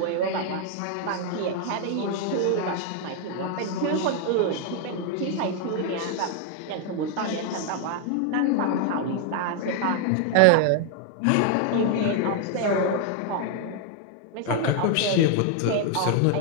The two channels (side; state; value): both; different; correlation 0.00